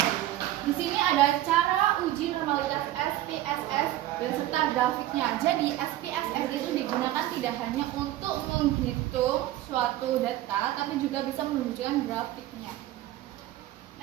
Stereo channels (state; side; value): quieter; left; 14.6 dB